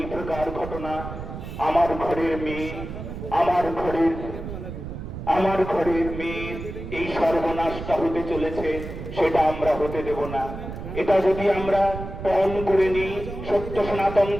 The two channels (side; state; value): right; noise; rumble, 9 dB below the sound